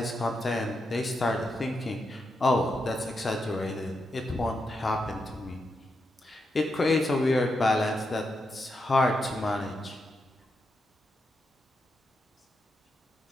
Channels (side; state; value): both; normal; correlation 0.85